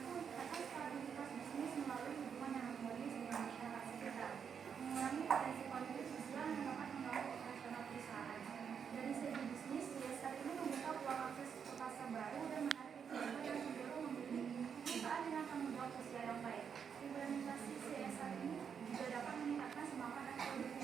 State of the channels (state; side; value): quieter; left; 7.1 dB